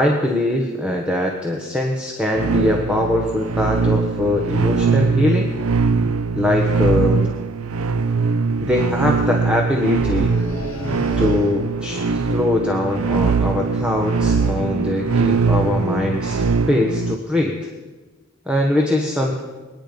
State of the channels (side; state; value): both; normal; correlation 0.62